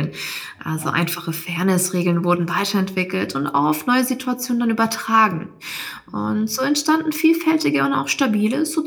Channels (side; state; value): both; identical; correlation 1.00